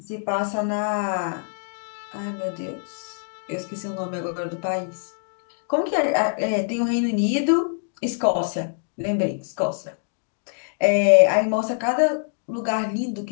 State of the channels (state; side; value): silent; right; digital silence